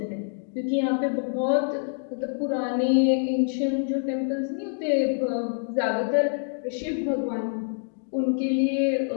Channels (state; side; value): silent; right; digital silence